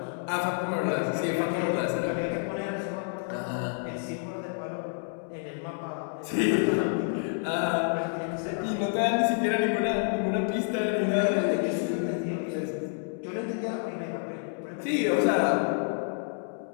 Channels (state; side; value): silent; right; digital silence